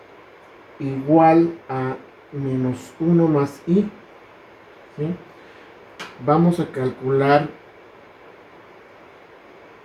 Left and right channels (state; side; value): identical; both; correlation 1.00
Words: igual a menos 1 más i, ¿sí? Vamos a calcular